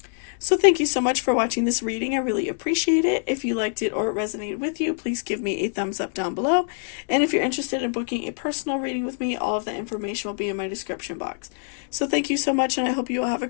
So thank you so much for watching this reading. I really appreciate it. If you liked it or it resonated with you, please give me a thumbs up down below. And if you're interested in booking a personal reading with me, all of the information will be in my description box. So thank you so much, and I hope you all have a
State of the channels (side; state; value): right; silent; digital silence